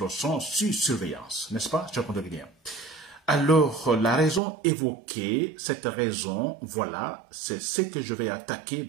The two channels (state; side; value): drops out; left; at 4.4 s